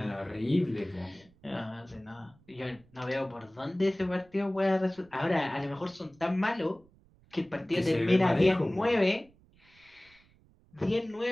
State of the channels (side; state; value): right; noise; rumble, 30 dB below the sound